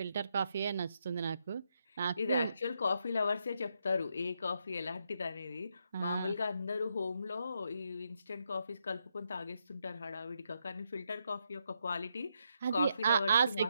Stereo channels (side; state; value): both; inverted; correlation -0.80